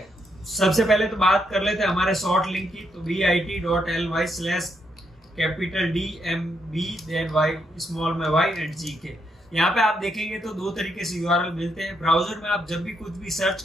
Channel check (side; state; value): both; normal; correlation 0.78